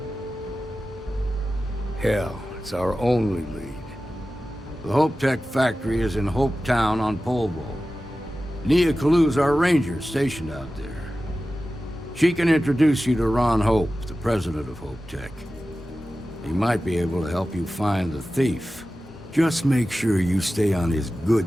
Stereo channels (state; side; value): normal; both; correlation 0.94